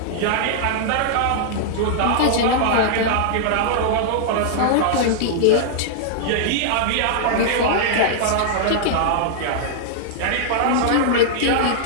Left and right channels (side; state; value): both; different; correlation -0.01